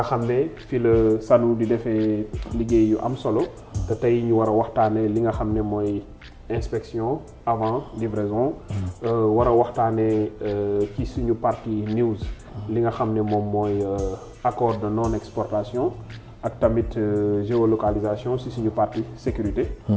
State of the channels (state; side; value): identical; both; correlation 1.00